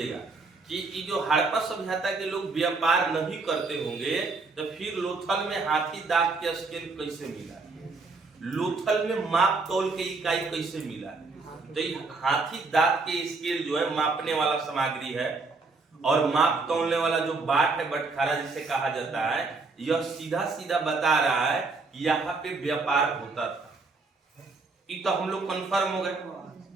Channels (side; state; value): left; quieter; 3.9 dB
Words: कि ये जो हड़प्पा सभ्यता के लोग व्यापार नहीं करते होंगे तो फिर लोथल में हाथी दांत के स्केल कैसे मिला, लोथल में माप तौल के इकाई कैसे मिला? तो ये हाथी दांत के स्केल जो है मापने वाला सामग्री है, और माप तौलने वाला जो बाट है, बटखारा जिसे कहा जाता है, यह सीधा सीधा बता रहा है कि यहाँ पे व्यापार होता था। ये तो हम लोग कंफर्म हो गए,